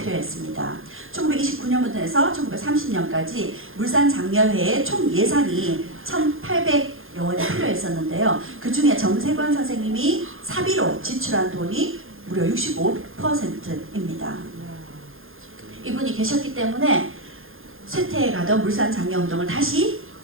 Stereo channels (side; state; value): left; late; 0.60 ms